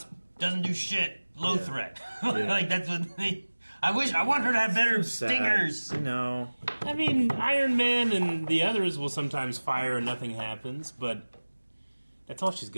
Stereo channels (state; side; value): inverted; both; correlation -1.00